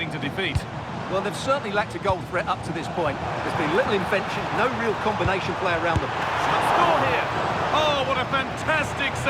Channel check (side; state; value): both; identical; correlation 1.00